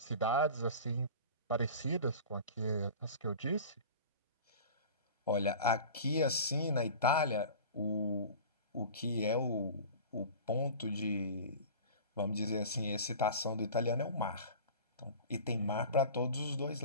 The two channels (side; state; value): both; inverted; correlation -0.37